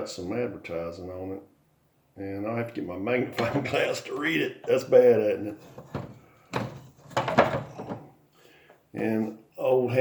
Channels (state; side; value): identical; both; correlation 1.00